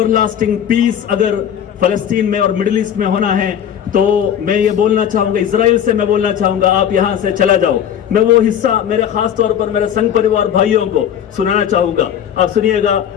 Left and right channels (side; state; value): right; quieter; 9.3 dB